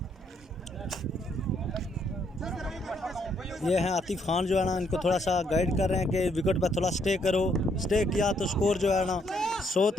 ये हैं आतिफ खान जो है ना, इनको थोड़ा सा गाइड कर रहे हैं कि विकेट पर थोड़ा स्टे करो, स्टे किया तो स्कोर जो है ना 100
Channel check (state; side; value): normal; both; correlation 0.71